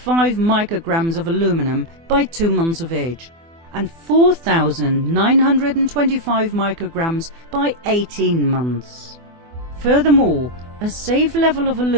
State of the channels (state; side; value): late; left; 24 ms